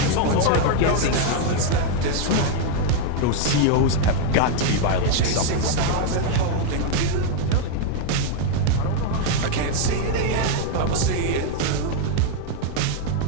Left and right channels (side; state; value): both; different; correlation 0.00